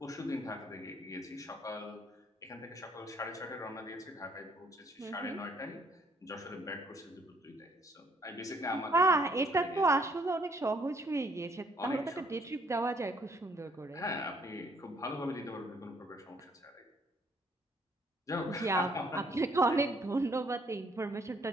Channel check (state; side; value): normal; both; correlation 0.66